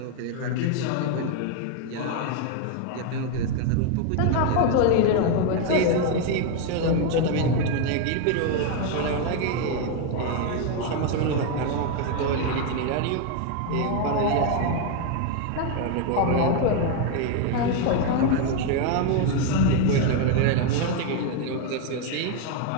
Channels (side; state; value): both; different; correlation 0.01